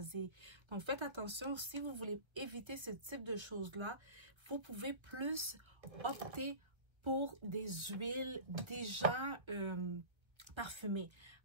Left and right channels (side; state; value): left; late; 1.5 ms